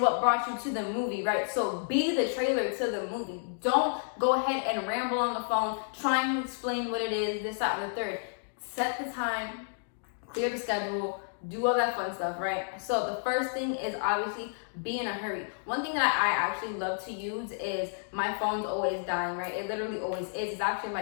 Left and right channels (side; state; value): right; silent; digital silence